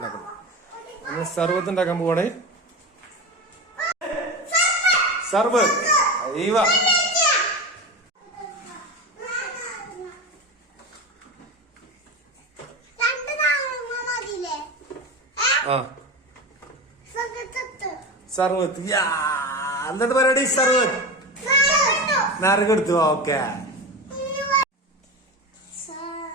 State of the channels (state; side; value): normal; both; correlation 0.24